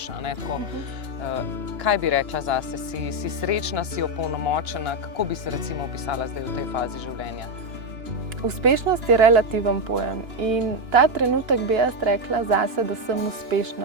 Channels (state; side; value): late; left; 2.9 ms